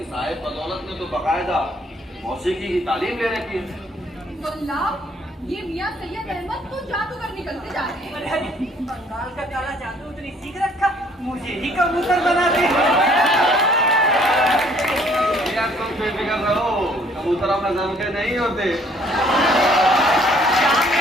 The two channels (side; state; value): both; normal; correlation 0.61